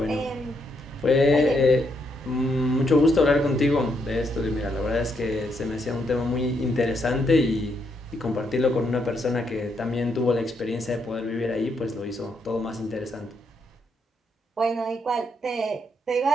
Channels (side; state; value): both; normal; correlation 0.77